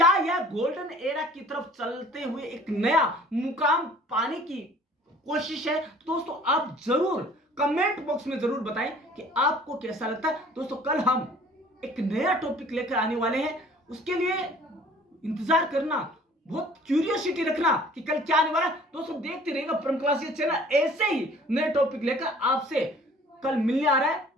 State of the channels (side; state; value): both; normal; correlation 0.52